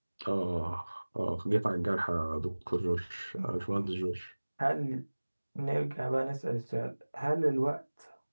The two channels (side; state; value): both; inverted; correlation -1.00